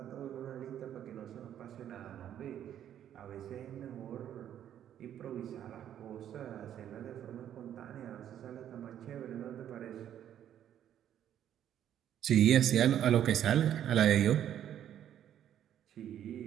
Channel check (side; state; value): left; quieter; 10.5 dB